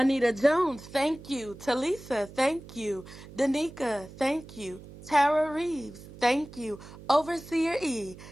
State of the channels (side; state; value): right; noise; hum, 17 dB below the sound